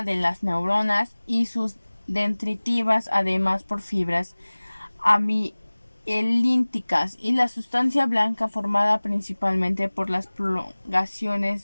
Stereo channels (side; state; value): both; inverted; correlation -1.00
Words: de las neuronas y sus dendritivas, además por fibras amielínticas, y la sustancia blanca formada principalmente por las